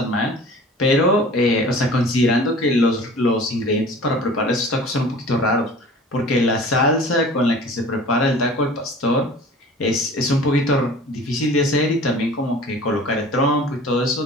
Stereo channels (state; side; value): normal; both; correlation 0.43